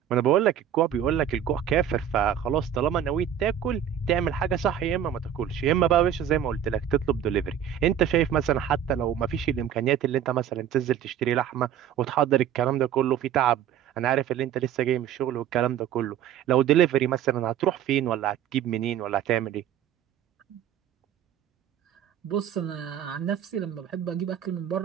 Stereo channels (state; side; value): quieter; left; 9.7 dB